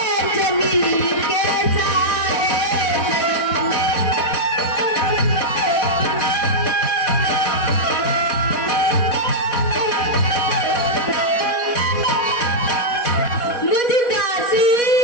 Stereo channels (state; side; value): late; right; 4.1 ms